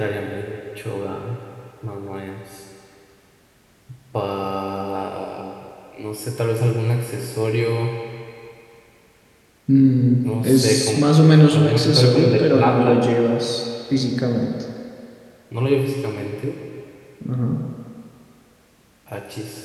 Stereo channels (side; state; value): both; identical; correlation 1.00